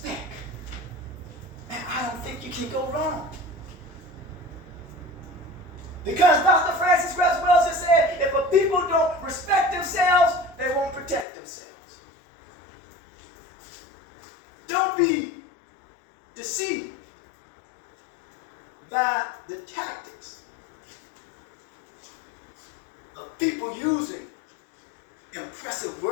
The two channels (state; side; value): drops out; right; at 11.2 s